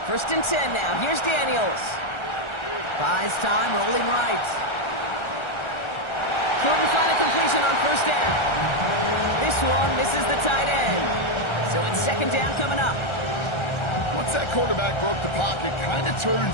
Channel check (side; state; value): right; late; 1.4 ms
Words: 1st and 10 now. Here's Daniels. Buys time, rolling right. Couldn't find a completion on first down. This one misses the tight end. So it's 2nd down coming up. Once that quarterback broke the pocket, kind of